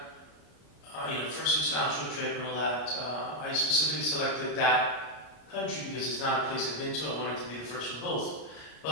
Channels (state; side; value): late; right; 33 ms